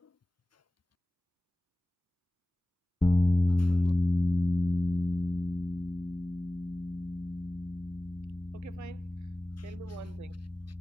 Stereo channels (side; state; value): both; normal; correlation 0.97